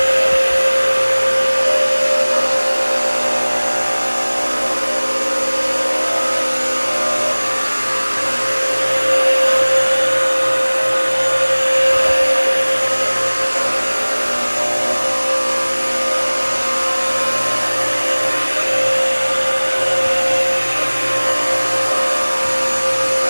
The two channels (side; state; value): both; inverted; correlation -1.00